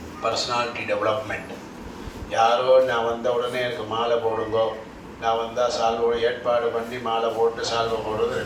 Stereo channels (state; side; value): identical; both; correlation 1.00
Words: பர்சனாலிட்டி டெவலப்மெண்ட், யாரோ நான் வந்த உடனே எனக்கு மாலை போடுங்கோ, நான் வந்தால் சால்வோட ஏற்பாடு பண்ணி மாலை போட்டு சால்வை போடுறது